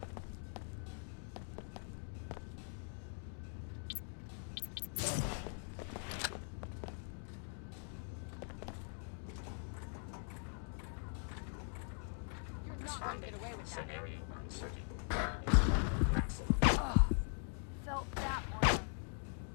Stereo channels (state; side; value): silent; right; 50 dB below the other